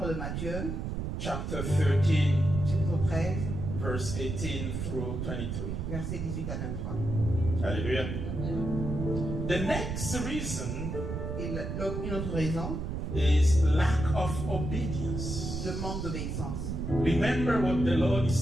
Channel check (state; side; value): noise; right; rumble, 4 dB below the sound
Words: de Matthieu, chapter 13, chapitre 13, verse 18 through 23. versets 18 à 23. Hallelujah. The next reason Et une autre raison, is lack of obedience. le manque d'obéissance. Remember what the Lord is